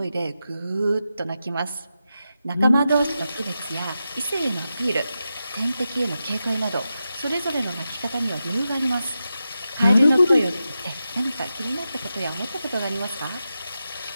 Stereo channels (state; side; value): inverted; both; correlation -0.90